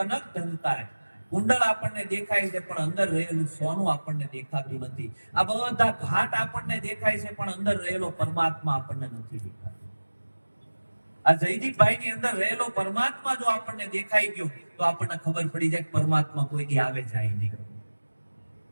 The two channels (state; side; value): inverted; both; correlation -1.00